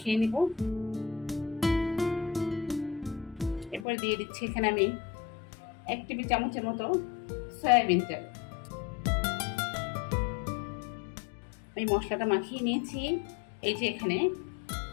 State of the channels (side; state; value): right; drops out; at 3.9 s